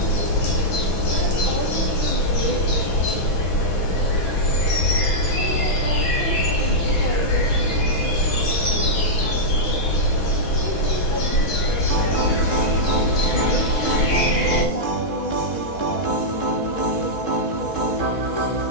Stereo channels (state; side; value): late; right; 6.1 ms